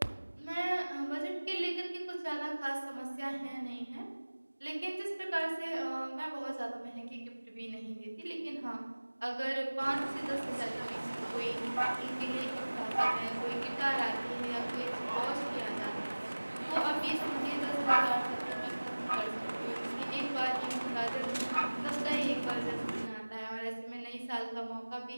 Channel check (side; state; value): both; inverted; correlation -1.00